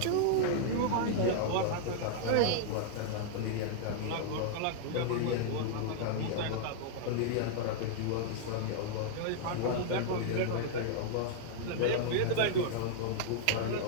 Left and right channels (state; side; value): different; both; correlation -0.01